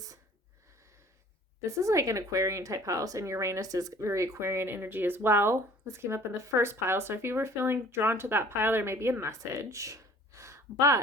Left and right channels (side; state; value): both; normal; correlation 0.50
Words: This is like an Aquarian type house, and Uranus is very Aquarian energy as well. This came up in the first pile, so if you were feeling drawn to that pile, there may be a message.